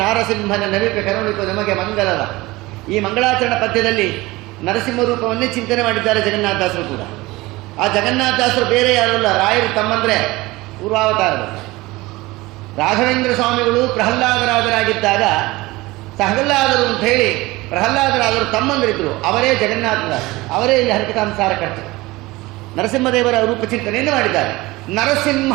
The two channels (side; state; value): left; quieter; 20.6 dB